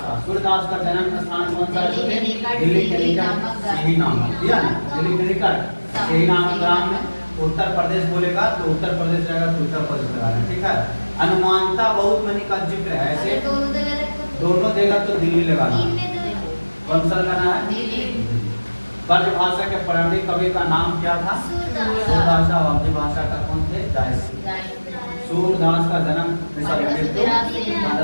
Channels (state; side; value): inverted; both; correlation -1.00